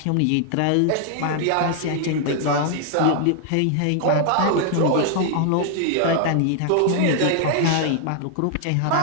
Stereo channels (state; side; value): different; both; correlation 0.00